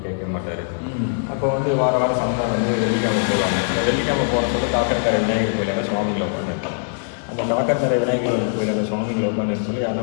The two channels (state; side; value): silent; right; digital silence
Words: கேட்க மாட்டார். அப்போ வந்து வாரம் சந்தா வந்து வெள்ளிக்கிழமை போவாங்க. வெள்ளிக்கிழமை போகிறதுக்கு காக்கத்தரை விநாயகர் கோயிலில் சுவாமிகளை உட்காந்துருக்காங்க. அந்த காக்கத்தரை விநாயகர் கோயிலில் சுவாமிகளை உட்காந்து சொல்லி